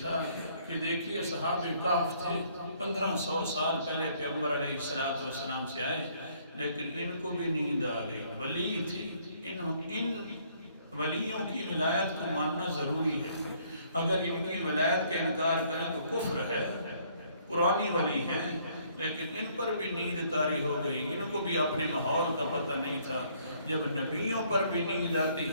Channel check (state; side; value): inverted; both; correlation -0.64